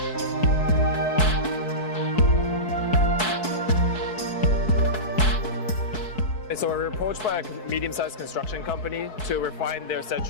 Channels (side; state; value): right; late; 4.6 ms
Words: So we were approached by a medium-sized construction company to refine their